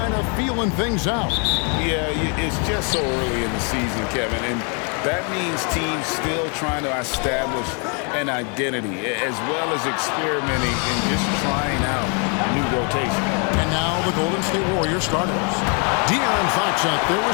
of feeling things out. Yeah, it's just so early in the season, Kevin, and that means teams still trying to establish an identity as well as experimenting and just trying out new rotation. And now the Golden State Warriors starters. De'Aaron Fox out there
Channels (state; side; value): quieter; right; 37.3 dB